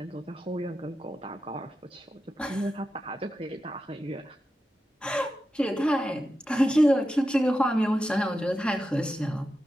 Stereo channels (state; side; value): normal; both; correlation 0.90